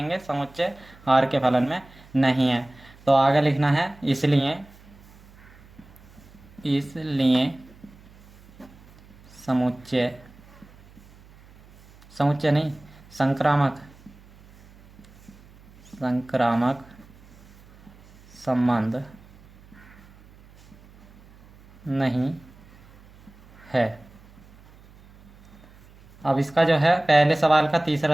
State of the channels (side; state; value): right; noise; hum, 25 dB below the sound